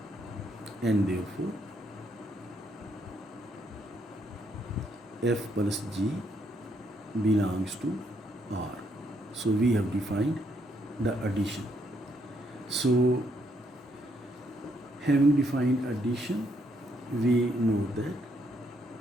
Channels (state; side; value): normal; both; correlation 0.73